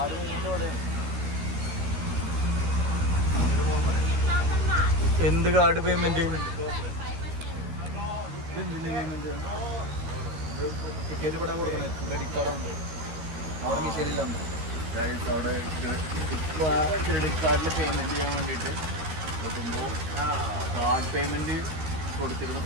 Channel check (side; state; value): left; late; 13 ms